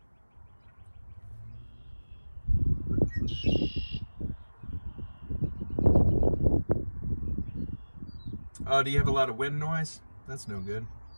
Oh, do you have a lot of wind noise? That's no good.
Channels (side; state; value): both; inverted; correlation -1.00